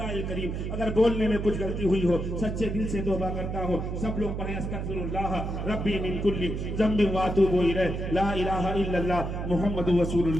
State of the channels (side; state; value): right; noise; hum, 4 dB below the sound